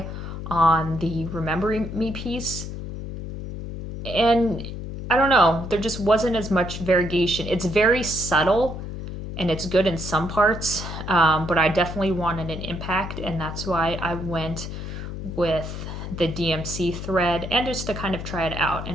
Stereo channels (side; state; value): left; noise; hum, 7 dB below the sound